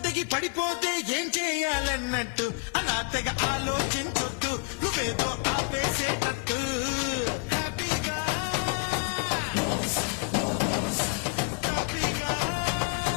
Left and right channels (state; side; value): quieter; right; 30.0 dB